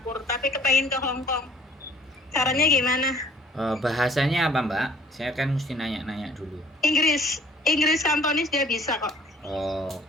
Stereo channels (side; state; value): both; normal; correlation 0.54